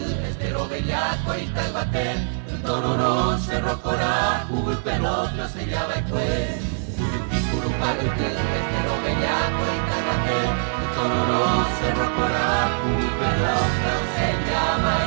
estero bellaco y talbatel. Tororó, Cerro Corá, Hugo y Pelotro se llama el juez. Yudicurupa estero bellaco y talbatel. Tororó, Cerro Corá, Hugo y Pelotro se llama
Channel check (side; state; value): left; silent; 58 dB below the other